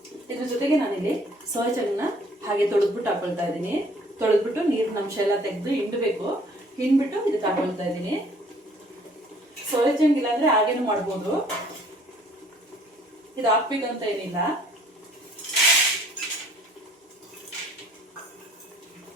ಇದ್ರ ಜೊತೆಗೆ ನಾನಿಲ್ಲಿ ಸೋಯಾ ಚಂಕ್ನ ಹಾಗೆ ತೊಳೆದ್ಬಿಟ್ಟು ಹಾಕೊಳ್ತಾ ಇದ್ದೀನಿ. ತೊಳೆದ್ಬಿಟ್ಟು ನೀರಿನ ಅಂಶ ಎಲ್ಲ ತೆಗೆದು ಹಿಂಡಬೇಕು. ಹಿಂಡ್ಬಿಟ್ಟು ಇದಕ್ಕೆ ಹಾಕೊಳ್ತಾ ಇದ್ದೀನಿ. ಸೋಯಾ ಚಂಕ್ ಇಲ್ಲಾಂದ್ರೆ ಹಾಗೇನು ಮಾಡ್ಬೋದು, ಇದು ಹಾಕ್ಬೇಕಂತ ಏನಿಲ್ಲ.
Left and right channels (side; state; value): both; normal; correlation 0.57